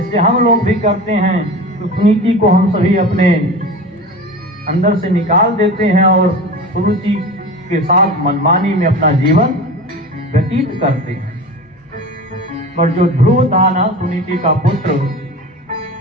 हम लोग भी करते हैं। तो सुनीति को हम सभी अपने अंदर से निकाल देते हैं और सुरुचि के साथ मनमानी में अपना जीवन व्यतीत करते हैं। पर जो ध्रुव था ना, सुनीति का पुत्र,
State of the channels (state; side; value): normal; both; correlation 0.32